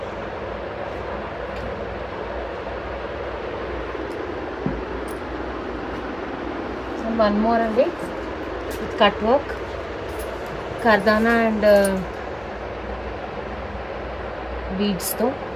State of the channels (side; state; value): right; noise; hum, 23 dB below the sound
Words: one more అండి విత్ కట్ వర్క్, కర్దానా అండ్ బీడ్స్తో,